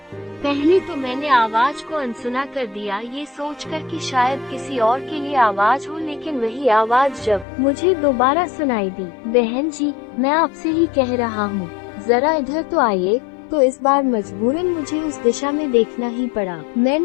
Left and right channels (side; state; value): right; drops out; at 7.5 s